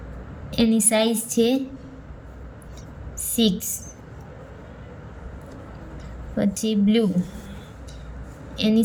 એની સાઇઝ છે 6. પછી બ્લુ,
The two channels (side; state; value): both; identical; correlation 1.00